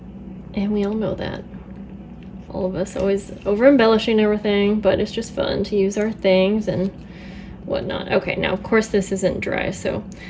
And we all know that. All of us always over embellishing everything, but it's just fun to use our things and whatnot. Okay, now of course this isn't dry, so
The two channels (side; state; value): both; identical; correlation 1.00